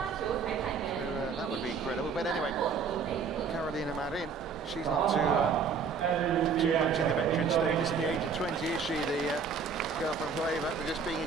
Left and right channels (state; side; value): quieter; left; 5.6 dB